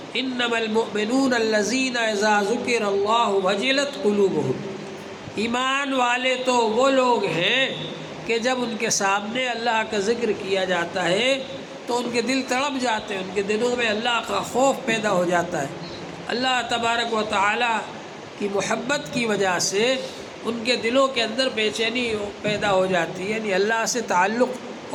انما المؤمنون الذین اذا ذکر اللہ وجلت قلوبهم۔ ایمان والے تو وہ لوگ ہیں کہ جب ان کے سامنے اللہ کا ذکر کیا جاتا ہے تو ان کے دل تڑپ جاتے ہیں، ان کے دلوں میں اللہ کا خوف پیدا ہو جاتا ہے۔ اللہ تبارک و تعالی کی محبت کی وجہ سے ان کے دلوں کے اندر بے چینی پیدا ہو جاتی ہے، یعنی اللہ سے تعلق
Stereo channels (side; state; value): both; identical; correlation 1.00